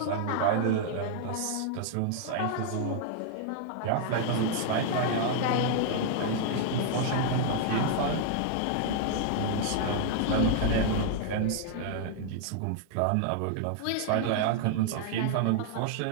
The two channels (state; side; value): different; both; correlation -0.01